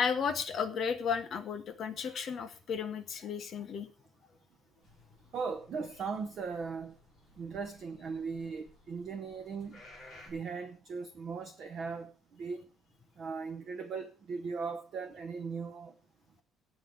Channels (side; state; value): both; normal; correlation 0.67